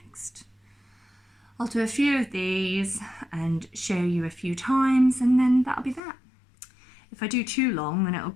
I'll do a few of these and show you a few times, and then that'll be that. If I do too long, then it'll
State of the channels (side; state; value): right; drops out; at 6.0 s